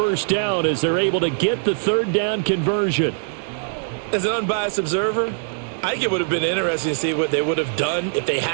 down as they're able to get the 3rd down conversion. As an unbiased observer, I think it would have been interesting to see what they would have done if they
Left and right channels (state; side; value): silent; left; digital silence